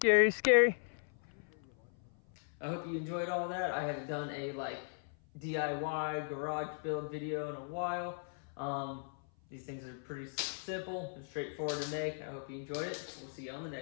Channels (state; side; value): silent; right; 53 dB below the other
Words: scary. I hope you enjoyed all that. I haven't done a DIY garage build video in a while. These things are pretty simple and straightforward to make. I hope you enjoyed it. We'll see you on the